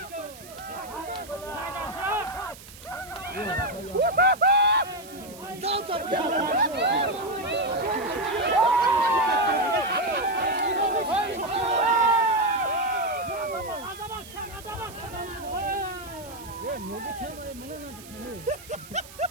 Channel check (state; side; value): noise; right; hiss, 18 dB below the sound